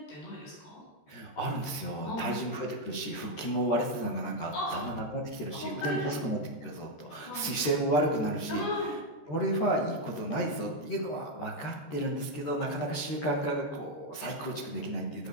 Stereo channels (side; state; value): right; late; 13 ms